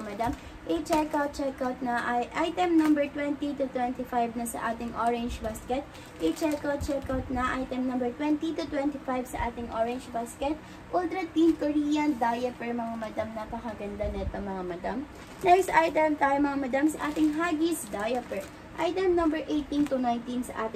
madam. I-check out na item number 20 to 25 na sa ating orange basket. I-check out na item number 20 to 25 sa ating orange basket. Ultra Thin Korean Diaper mga madam. Napakaganda nito mga madam. Next item tayo mga madam sa ating Huggies Diaper. Item number 18 to 19 sa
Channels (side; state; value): both; identical; correlation 1.00